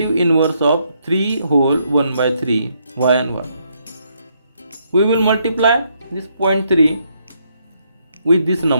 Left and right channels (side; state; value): both; inverted; correlation -0.74